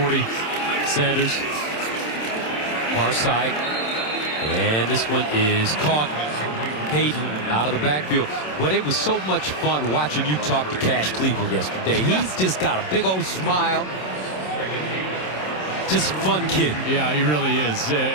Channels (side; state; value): right; late; 27 ms